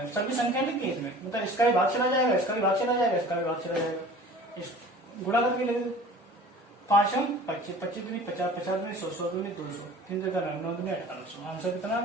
सभी संख्या लिखी है इसमें, मतलब इसका भी भाग चला जाएगा, इसका भी भाग चला जाएगा, इसका भी भाग चला जाएगा, इस गुणा करके ले दो। 5 हम 25, 25 दूनी 50, 50 दूनी 100, 100 दूनी 200, 3 दूनी 9 दूनी 1800। आंसर कितना आ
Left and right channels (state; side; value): normal; both; correlation 0.43